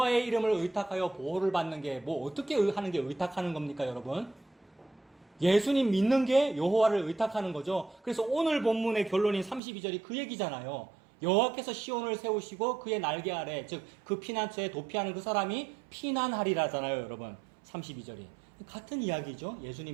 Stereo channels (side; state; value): left; drops out; at 9.6 s